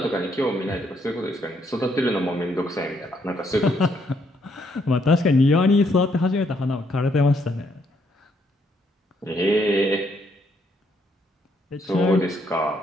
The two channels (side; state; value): both; normal; correlation 0.72